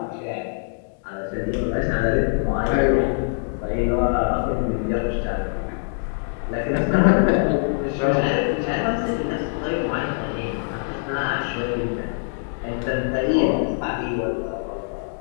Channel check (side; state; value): right; silent; 63 dB below the other